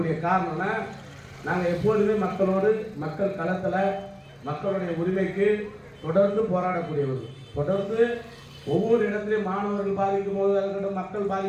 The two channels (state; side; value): identical; both; correlation 1.00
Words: காரணம்னா, நாங்கள் எப்போதுமே மக்களோடு, மக்கள் களத்தில் மக்களுடைய உரிமைக்கு தொடர்ந்து போராடக்கூடியவர்கள். தொடர்ந்து ஒவ்வொரு இடத்துலையும் மாணவர்கள் பாதிக்கும் போதாக இருக்கட்டும், மக்கள்